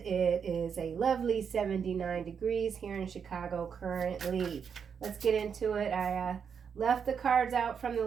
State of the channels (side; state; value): left; quieter; 6.9 dB